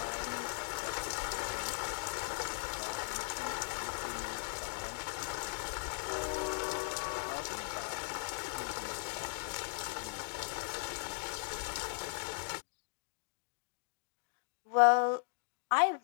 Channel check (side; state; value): right; silent; digital silence